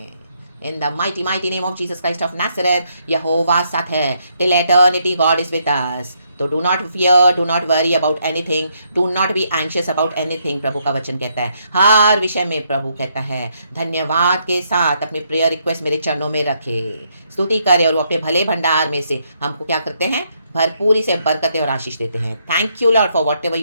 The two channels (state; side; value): inverted; both; correlation -0.75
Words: In the mighty, mighty name of Jesus Christ of Nazareth, यहोवा साथ है। Till eternity God is with us. तो do not fear, do not worry about anything, do not be anxious about anything, प्रभु का वचन कहता है। हर विषय में प्रभु कहता है धन्यवाद के साथ अपने प्रेयर रिक्वेस्ट मेरे चरणों में रखे, स्तुति करे और वो अपने भले भंडार में से हमको क्या करते हैं? भरपूरी से बरकतें और आशीष देते हैं। Thank you Lord for what ever